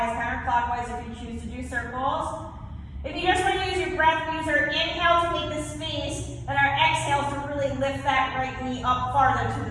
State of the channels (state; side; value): identical; both; correlation 1.00